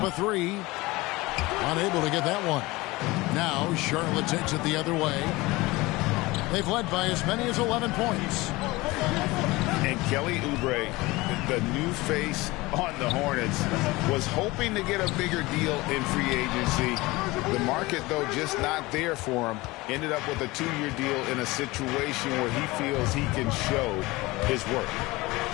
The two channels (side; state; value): right; quieter; 21.3 dB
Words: a 3. Unable to get that one. Now Charlotte takes it the other way. They've led by as many as 11 points. And Kelly Oubre, the new face on the Hornets, was hoping to get a bigger deal in free agency. The market, though, just not there for him. Ended up with a 2-year deal in a situation where he feels he can show his work.